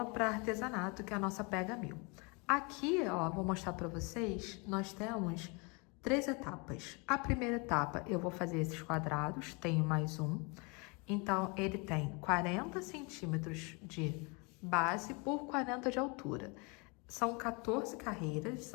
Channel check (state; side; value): quieter; right; 30.6 dB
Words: para artesanato, que é a nossa pega-mil. Aqui, ó, vou mostrar para vocês, nós temos 3 etapas. A primeira etapa, eu vou fazer esses quadrados, tenho mais um. Então, ele tem 40 centímetros de base por 40 de altura. São 14 carreiras,